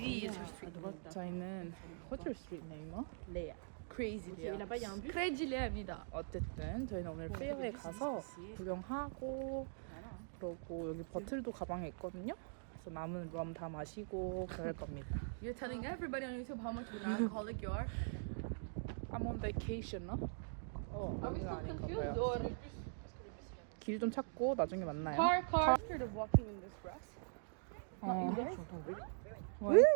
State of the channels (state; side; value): silent; left; digital silence